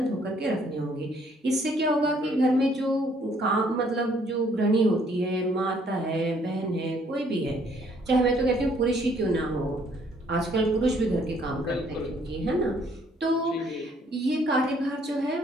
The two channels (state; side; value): normal; both; correlation 0.64